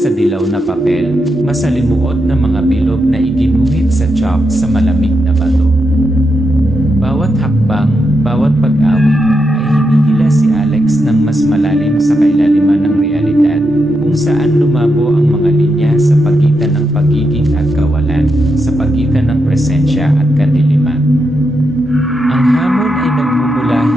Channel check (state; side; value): normal; both; correlation 0.84